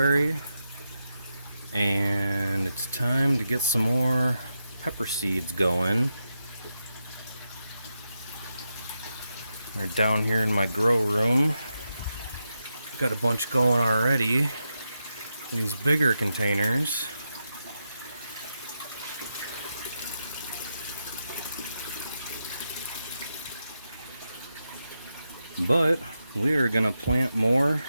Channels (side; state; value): both; inverted; correlation -0.87